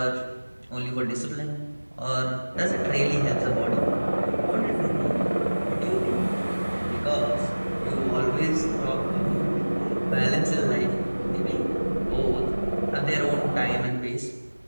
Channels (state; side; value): inverted; both; correlation -1.00